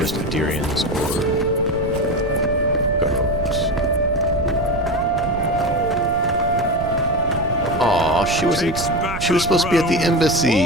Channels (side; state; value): right; noise; rumble, 9 dB below the sound